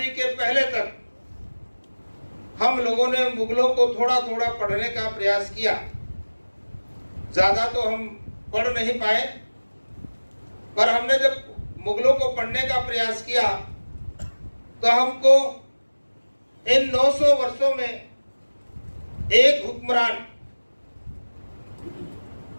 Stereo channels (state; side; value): inverted; both; correlation -1.00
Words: के पहले तक हम लोगों ने मुगलों को थोड़ा थोड़ा पढ़ने का प्रयास किया, ज्यादा तो हम पढ़ नहीं पाए, पर हमने जब मुगलों को पढ़ने का प्रयास किया तो हमको इन 900 वर्षों में एक हुक्मरान